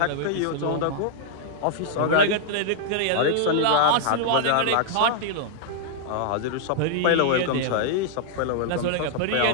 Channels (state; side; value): different; both; correlation -0.01